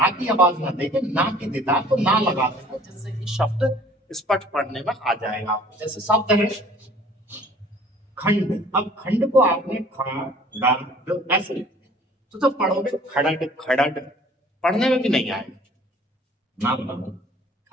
की आवाज ना देके ना की देता है, तो ना लगा देता है, जिससे कि शब्द स्पष्ट पढ़ने में आ जाएगा आपको। जैसे शब्द है खंड, अब खंड को आपने खड़ ऐसे लिखा, तो जब पढ़ोगे खड़ड खड़ड पढ़ने में भी नहीं आएगा, ना पढ़ो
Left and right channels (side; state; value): both; normal; correlation 0.52